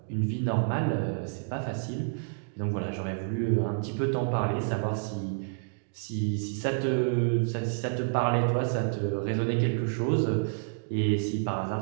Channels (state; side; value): silent; left; digital silence